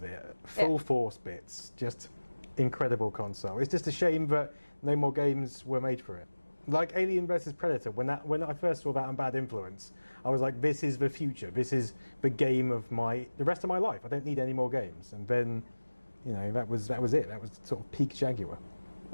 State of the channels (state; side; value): inverted; both; correlation -1.00